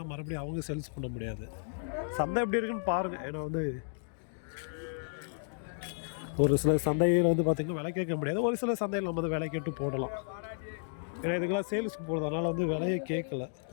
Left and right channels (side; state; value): right; silent; digital silence